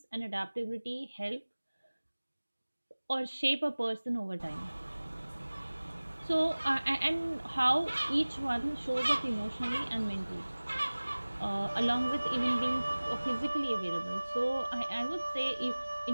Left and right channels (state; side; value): inverted; both; correlation -1.00